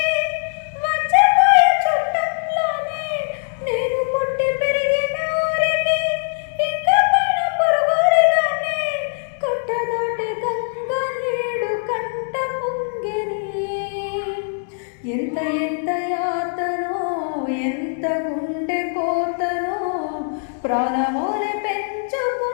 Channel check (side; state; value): right; silent; digital silence